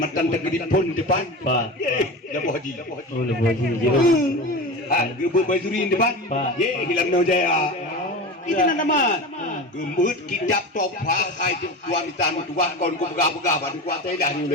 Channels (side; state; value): both; normal; correlation 0.27